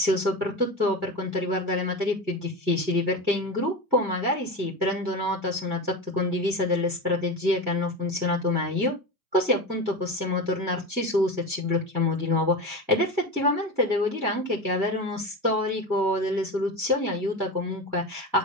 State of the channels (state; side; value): late; left; 1.5 ms